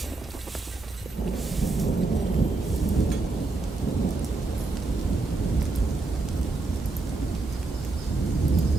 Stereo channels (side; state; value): left; quieter; 3.5 dB